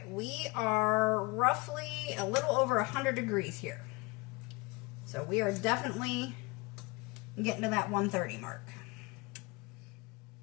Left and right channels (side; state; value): right; quieter; 25.6 dB